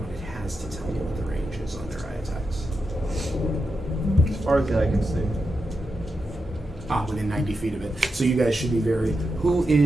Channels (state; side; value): normal; both; correlation 0.87